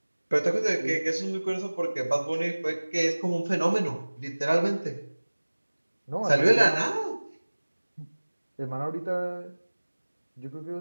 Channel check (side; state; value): both; inverted; correlation -1.00